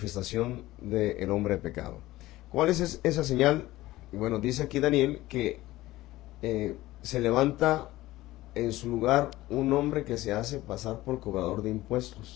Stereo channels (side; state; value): right; quieter; 17.2 dB